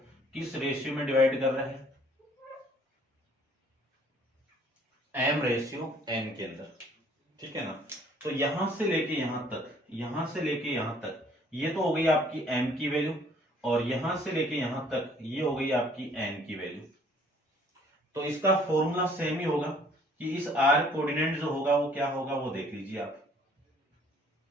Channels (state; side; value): normal; both; correlation 0.58